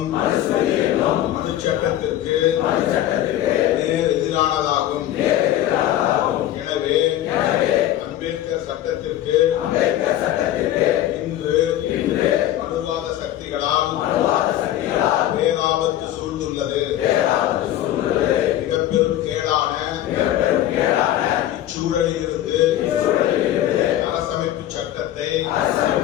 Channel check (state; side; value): quieter; right; 12.8 dB